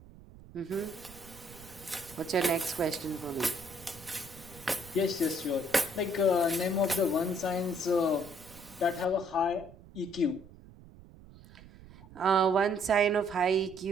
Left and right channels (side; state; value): right; noise; rumble, 20 dB below the sound